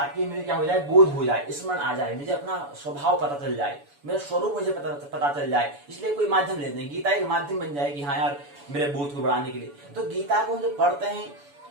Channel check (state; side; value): late; left; 7.0 ms